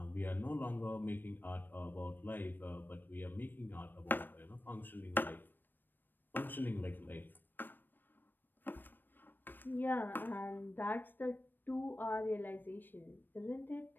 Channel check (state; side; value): late; right; 0.093 ms